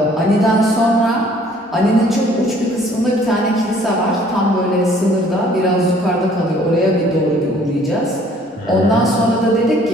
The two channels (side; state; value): both; normal; correlation 0.58